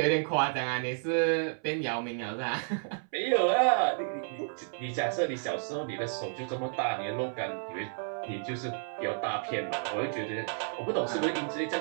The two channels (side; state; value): left; silent; 57 dB below the other